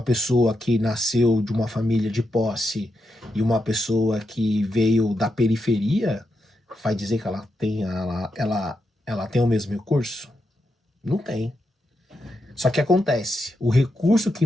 pessoa que nasceu de uma família de posse e uma pessoa que veio da periferia, vai dizer que ela tem o mesmo recurso? Não tem. Só que acontece, o recurso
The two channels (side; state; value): both; normal; correlation 0.85